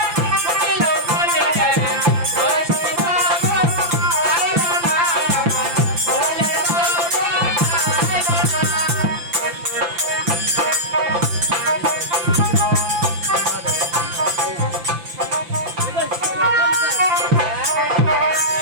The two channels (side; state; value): left; late; 5.9 ms